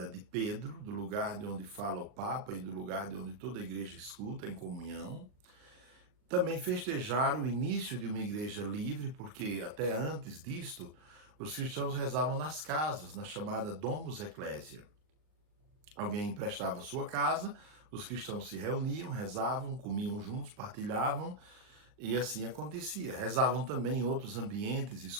de Pedro, do lugar de onde fala o Papa e do lugar de onde toda a igreja escuta em comunhão. Também festejar o início de uma igreja livre, porque até antes disto, os cristãos rezavam nas casas, na chamada Domus Ecclesia. Alguém emprestava sua casa, os cristãos se reuniam, rezavam, comiam juntos, partilhavam, e assim acontecia. Rezavam também em outros ambientes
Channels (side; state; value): left; late; 39 ms